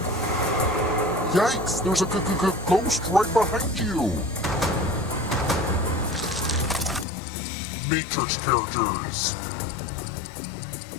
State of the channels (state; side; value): drops out; right; at 7.1 s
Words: Yikes, there's a ghost right behind you. Matrix characters.